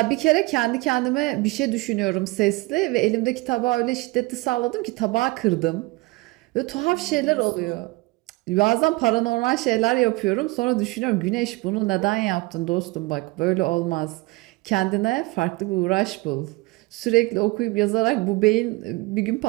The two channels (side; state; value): left; quieter; 23.1 dB